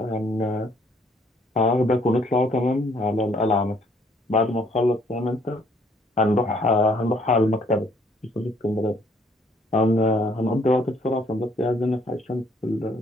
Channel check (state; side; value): normal; both; correlation 0.64